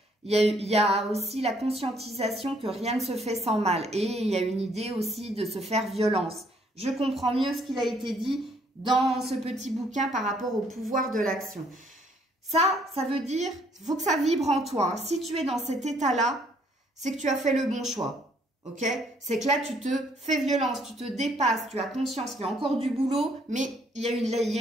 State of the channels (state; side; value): normal; both; correlation 0.66